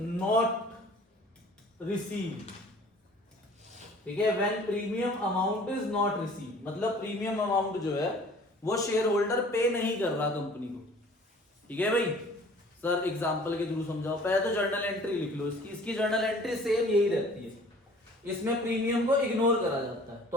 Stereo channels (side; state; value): both; normal; correlation 0.50